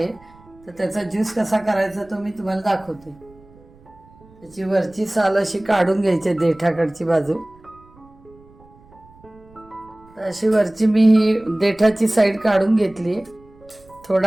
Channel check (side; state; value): right; noise; rumble, 26 dB below the sound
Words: तर त्याचा ज्यूस कसा करायचा तो मी तुम्हाला दाखवते। त्याची वरची साल अशी काढून घ्यायची, देठाकडची बाजू। तर अशी वरची मी ही देठाची साईड काढून घेतली।